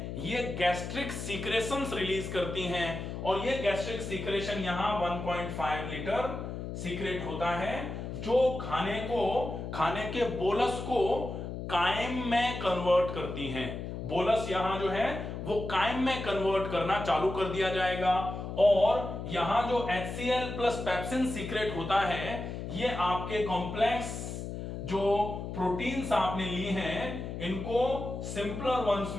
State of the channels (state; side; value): noise; left; hum, 6 dB below the sound